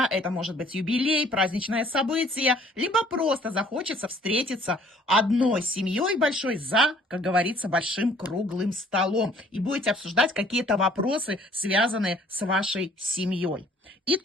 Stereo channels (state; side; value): normal; both; correlation 0.57